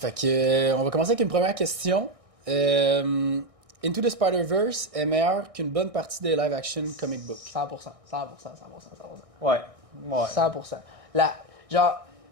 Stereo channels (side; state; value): left; late; 1.6 ms